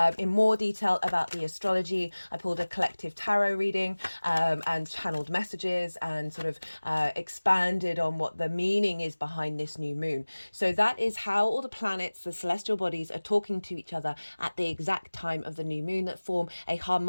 in more detail about the astrology. I pulled a collective tarot reading and channeled messages and sort of expanded on what the meaning is behind this new moon. So that is how all the planets, the celestial bodies, are talking to each other at the exact time of the new moon that form a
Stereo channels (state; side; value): inverted; both; correlation -1.00